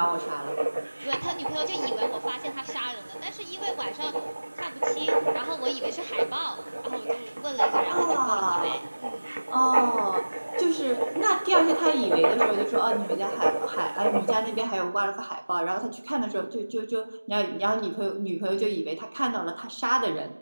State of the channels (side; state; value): both; inverted; correlation -1.00